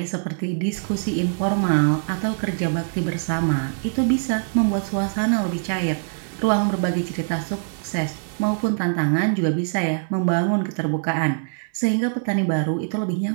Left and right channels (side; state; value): left; silent; digital silence